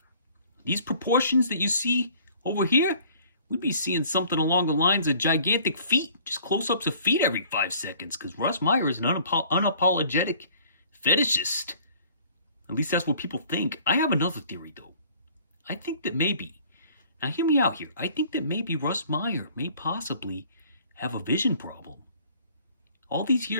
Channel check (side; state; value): both; inverted; correlation -0.54